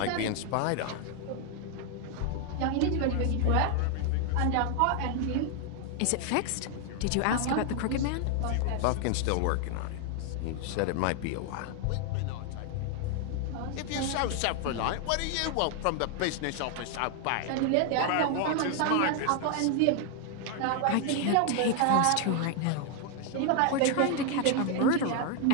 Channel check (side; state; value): both; different; correlation 0.00